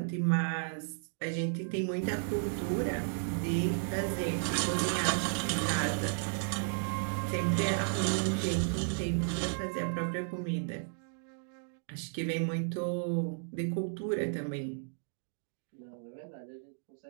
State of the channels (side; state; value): left; silent; digital silence